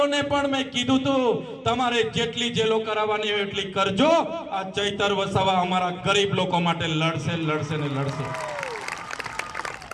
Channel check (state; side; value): identical; both; correlation 1.00